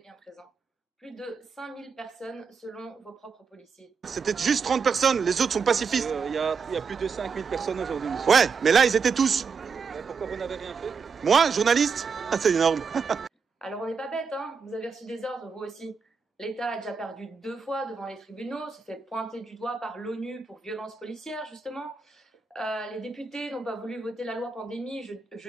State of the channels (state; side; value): quieter; left; 5.4 dB